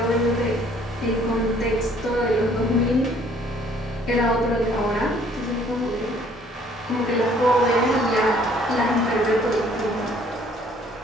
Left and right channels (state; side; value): normal; both; correlation 0.59